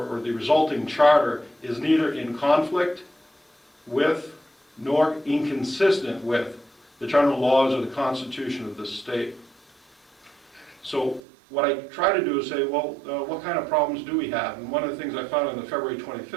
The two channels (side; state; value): left; drops out; at 11.2 s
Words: the resulting charter is neither in conflict with nor inconsistent with the general laws of the Constitution of the state. So what I try to do is say, well, what kind of problems do we have? And one of the things I found in the February